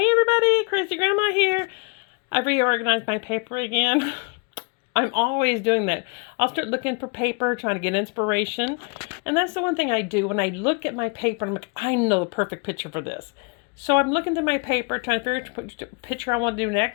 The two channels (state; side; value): quieter; right; 34.6 dB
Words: everybody, Crazy Grandma here. I've reorganized my paper again. I'm always doing that. I'll start looking for paper, trying to get inspiration. And that's the one thing I do. When I look at my paper, I'm like, I know the perfect picture for this. So I'm looking through my paper, trying to figure out which picture I want to do